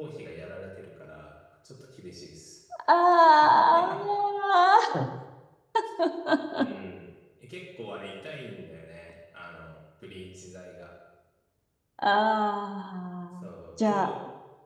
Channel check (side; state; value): both; identical; correlation 1.00